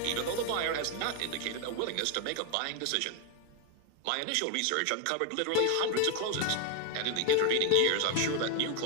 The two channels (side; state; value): both; different; correlation 0.01